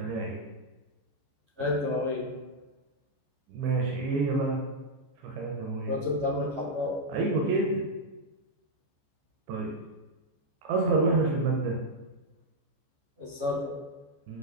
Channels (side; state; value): left; late; 14 ms